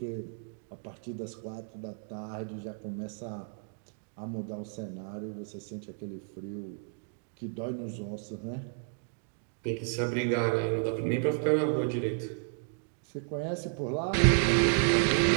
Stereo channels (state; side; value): silent; left; 56 dB below the other